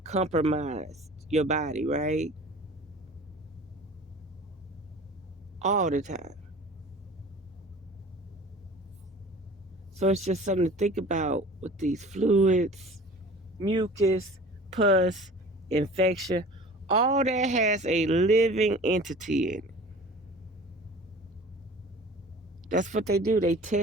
your body, right? All the time. So it's just something to think about with these fluids, mucus, pus, infection. All that has a living entity in it. That's what they do. They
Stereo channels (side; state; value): both; normal; correlation 0.43